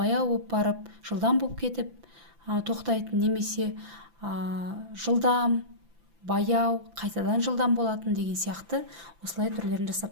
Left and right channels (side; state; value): left; late; 5.9 ms